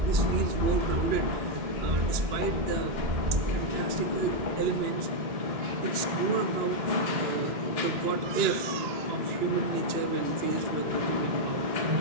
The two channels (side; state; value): left; late; 2.8 ms